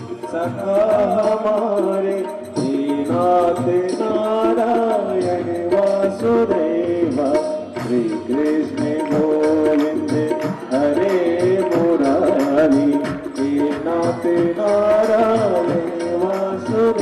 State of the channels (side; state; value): both; identical; correlation 1.00